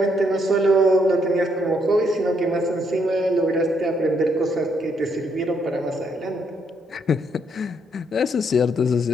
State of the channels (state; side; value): normal; both; correlation 0.73